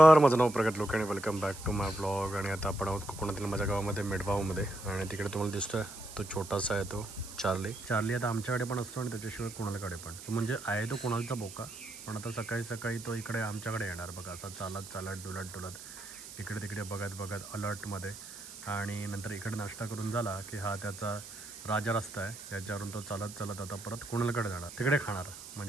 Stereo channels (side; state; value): right; noise; hiss, 13 dB below the sound